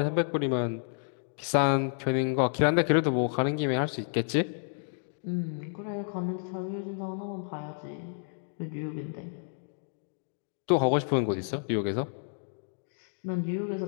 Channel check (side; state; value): right; silent; digital silence